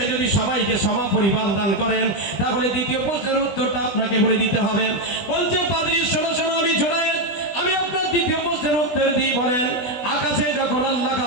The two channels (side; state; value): right; late; 20 ms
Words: যদি সবাইকে সমান পরিমাণ দান করেন, তাহলে দ্বিতীয় প্রশ্নের উত্তরটা আপনাকে বলে দিতে হবে। বলছে পাদ্রী শোনো শোনো, আমি জোনায়েদ আমি আপনার দ্বিতীয় প্রশ্নের উত্তর দিই। বলেন আকাশে যখন আল্লাহ